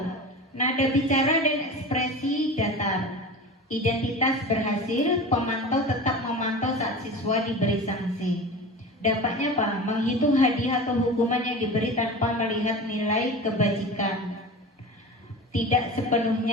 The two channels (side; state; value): both; normal; correlation 0.32